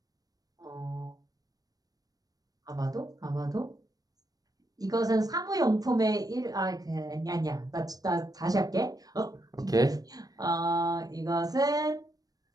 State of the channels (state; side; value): late; left; 0.18 ms